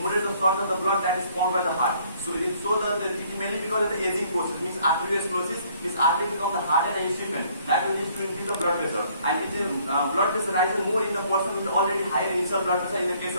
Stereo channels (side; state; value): both; inverted; correlation -0.62